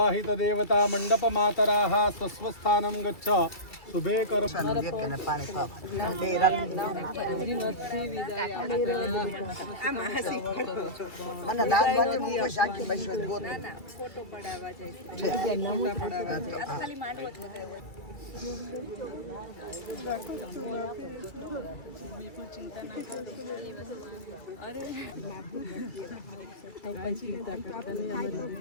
દેવતા મંડપ માતરાહ સ્વસ્થાનમ ગચ્છ. શુભે કર.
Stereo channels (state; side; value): late; right; 2.3 ms